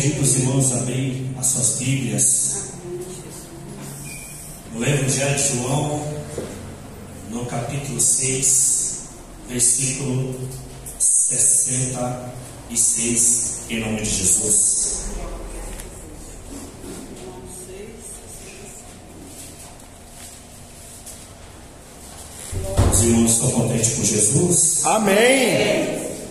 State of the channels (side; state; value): both; identical; correlation 1.00